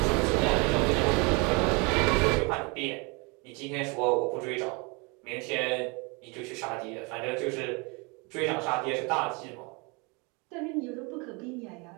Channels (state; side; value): quieter; left; 29.9 dB